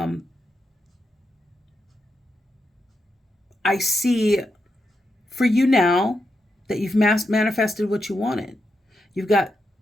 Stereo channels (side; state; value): both; normal; correlation 0.85